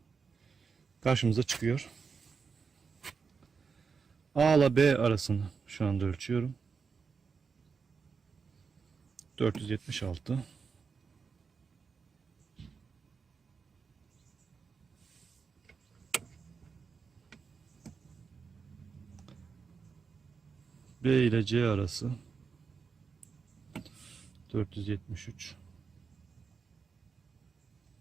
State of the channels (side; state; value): left; quieter; 5.4 dB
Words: karşımıza çıkıyor. A ile B arasını şu anda ölçüyorum. 476. B ile C arası 473.